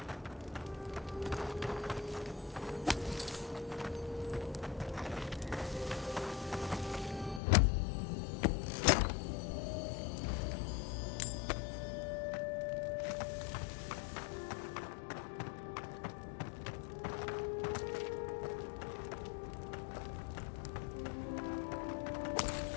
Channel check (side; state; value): right; drops out; at 7.4 s